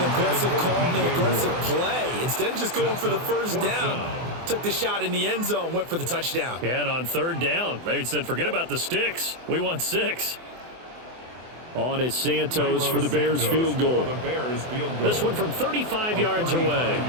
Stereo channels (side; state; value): left; late; 24 ms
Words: aggressive call and an aggressive play. Instead of just going for the first down, took the shot in the end zone, went for the touchdown. Yeah, and on 3rd down, maybe said, forget about the sticks. We want 6. On is Santos for the Bears field goal. This one from 35 yards away.